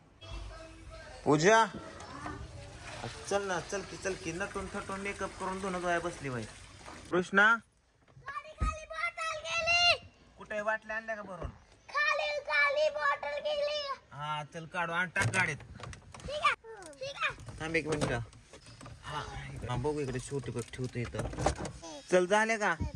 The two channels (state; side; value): identical; both; correlation 1.00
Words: पूजा चल ना, चल की नटून थटून मेकअप करून दोन गोया बसली बाई. कृष्णा कुठे बाटल्या आणल्या का भरून? हा चल काढू आणि टाक गाडीत. थांब एक मिनिट. हा बघू इकडे छोटी बघ ठेवतो इथं. चल झाले का